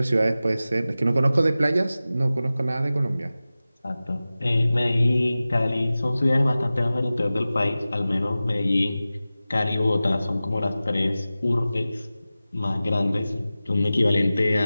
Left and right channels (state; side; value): inverted; both; correlation -0.96